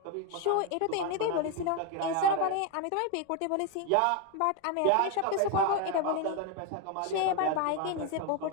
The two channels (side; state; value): both; different; correlation 0.02